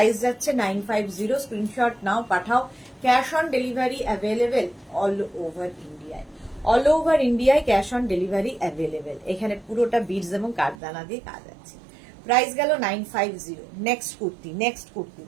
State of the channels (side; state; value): left; drops out; at 10.8 s